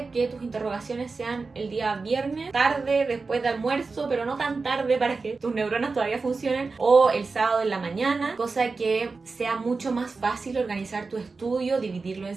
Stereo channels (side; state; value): left; quieter; 4.2 dB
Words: que tus interrogaciones sean el día viernes, tarde, después de almuerzo, pero no tan tarde para que tus neuronas todavía funcionen, o el sábado en la mañana, cosa que sea mucho más fácil organizar tu estudio, dividirlo en